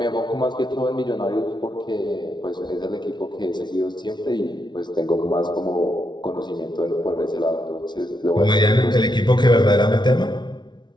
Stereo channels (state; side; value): late; right; 0.21 ms